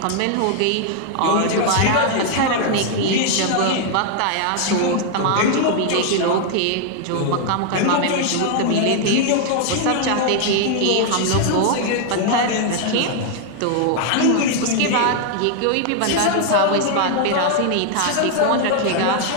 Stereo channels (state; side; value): different; both; correlation 0.00